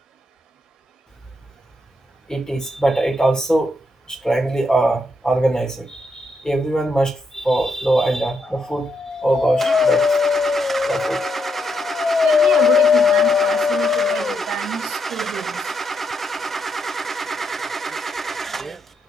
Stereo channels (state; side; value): normal; both; correlation 0.79